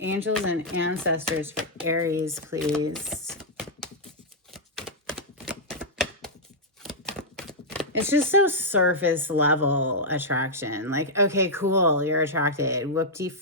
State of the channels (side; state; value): both; normal; correlation -0.07